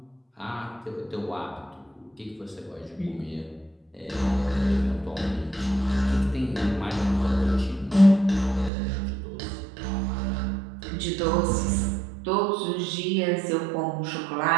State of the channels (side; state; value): left; drops out; at 8.7 s